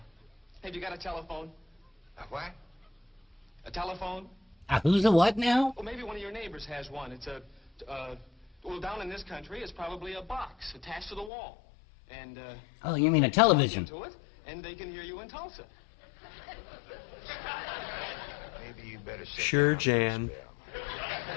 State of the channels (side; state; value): right; drops out; at 11.3 s